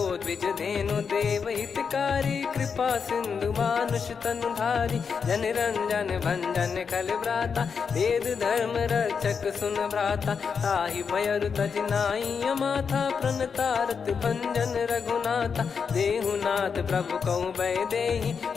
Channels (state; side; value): quieter; right; 6.1 dB